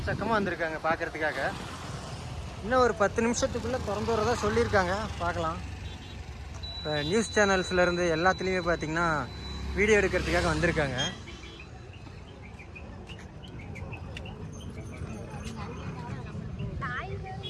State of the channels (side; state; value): both; identical; correlation 1.00